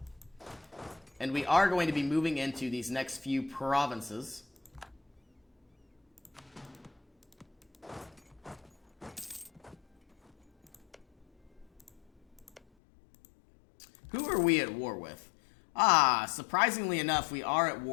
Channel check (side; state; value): right; drops out; at 12.6 s